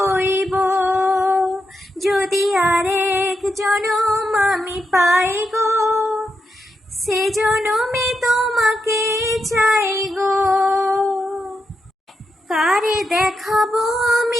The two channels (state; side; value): normal; both; correlation 0.85